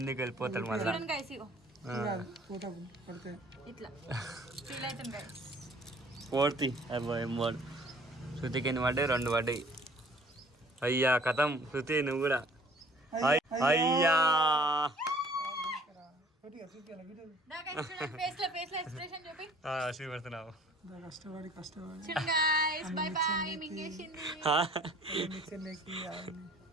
వెళ్ళిపోతాడు మళ్ళీ. చూడండి గైస్ ఇగో ఫోటో పడితే ఇట్లా ఫీల్ అవుతుంది గైస్. 4th అబ్బాయి మూడు. శృతికి ఎన్ని పడ్డాయి? 2 పడ్డాయి. అయ్యా కథం శృతి నువ్వు కూడా. అయ్యా ఫేస్ లో ఎక్స్ప్రెషన్ చూపి చూపెడుతున్నావు. కష్టపడి కష్టపడి చూడండి గైస్. By by మింగేసింది. చెన్నైకి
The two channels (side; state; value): both; normal; correlation 0.53